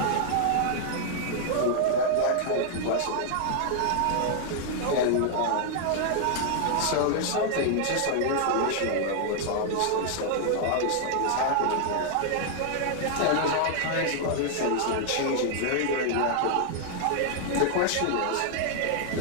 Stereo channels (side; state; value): both; different; correlation -0.01